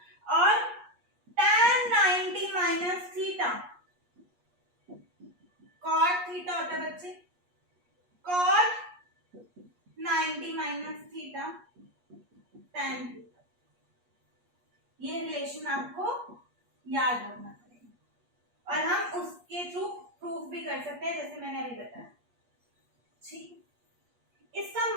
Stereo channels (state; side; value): late; left; 8.4 ms